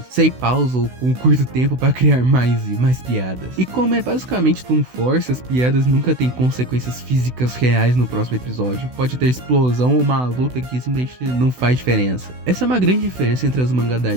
sem pausa ou com curto tempo para criar mais e mais piadas. E como é basicamente Toon Force, as piadas nunca têm consequências físicas reais no próximo episódio. Pode ter explosão ou uma luta que simplesmente não faz diferença. Essa é uma grande diferença entre as Azumanga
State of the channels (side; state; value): left; late; 16 ms